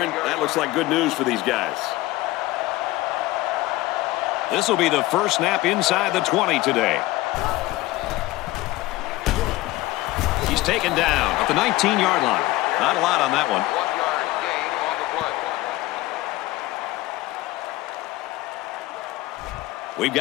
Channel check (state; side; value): quieter; right; 18.3 dB